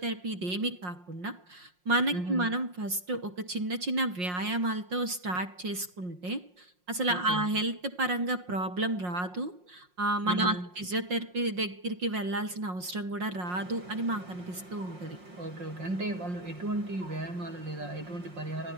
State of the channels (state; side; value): late; left; 5.6 ms